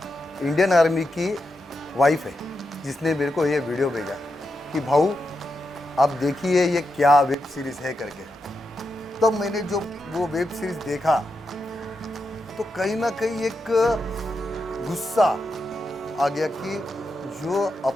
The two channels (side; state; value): both; normal; correlation 0.86